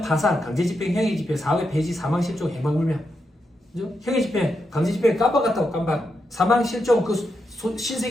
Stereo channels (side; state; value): both; normal; correlation 0.84